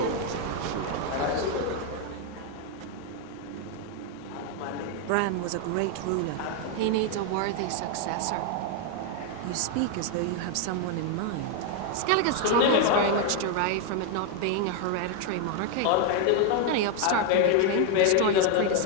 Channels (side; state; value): both; different; correlation 0.01